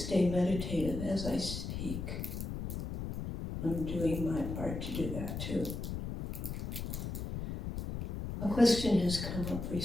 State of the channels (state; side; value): noise; left; rumble, 5 dB below the sound